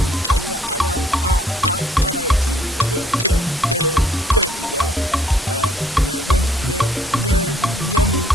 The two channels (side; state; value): both; normal; correlation 0.63